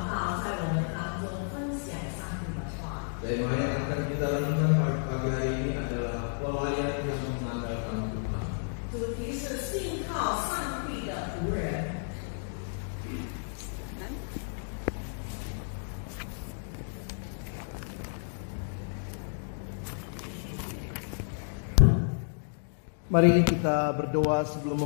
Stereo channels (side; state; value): right; silent; digital silence